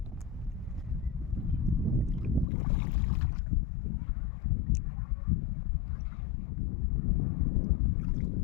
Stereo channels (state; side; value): drops out; right; at 2.5 s